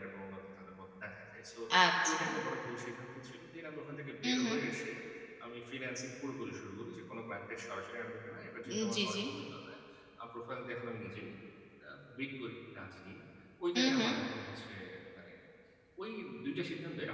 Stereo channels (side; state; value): both; identical; correlation 1.00